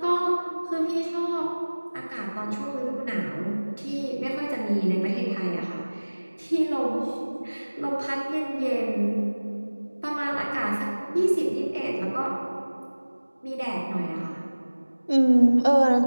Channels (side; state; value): both; inverted; correlation -1.00